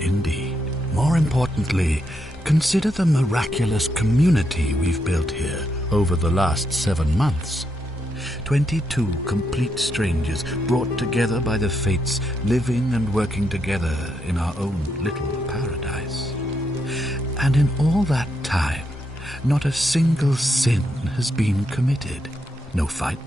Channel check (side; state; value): both; normal; correlation 0.80